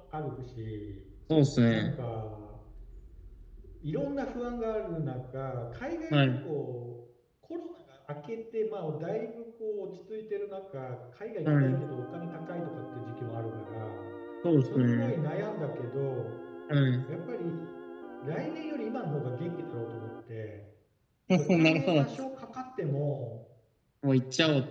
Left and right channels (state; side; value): identical; both; correlation 1.00